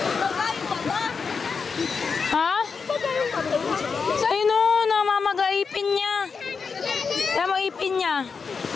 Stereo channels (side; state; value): right; quieter; 5.4 dB